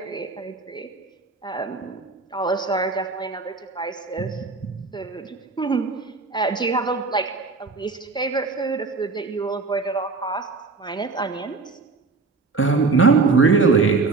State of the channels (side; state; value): left; quieter; 4.2 dB